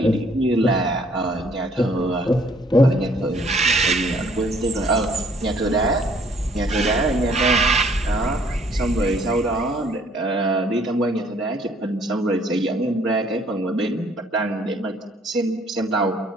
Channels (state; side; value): normal; both; correlation 0.61